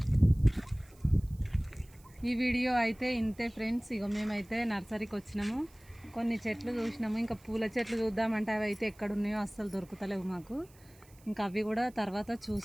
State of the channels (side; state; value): right; noise; hiss, 27 dB below the sound